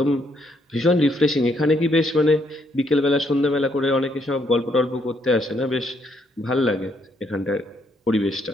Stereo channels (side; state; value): both; normal; correlation 0.72